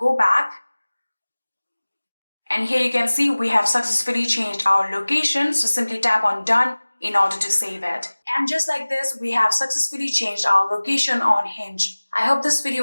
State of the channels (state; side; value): inverted; both; correlation -1.00